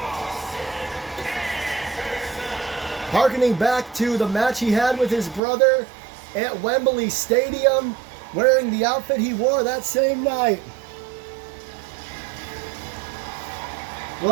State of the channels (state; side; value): drops out; left; at 5.4 s